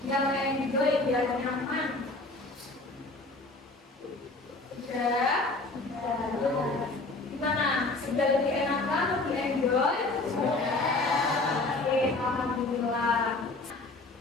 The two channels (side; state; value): right; quieter; 3.1 dB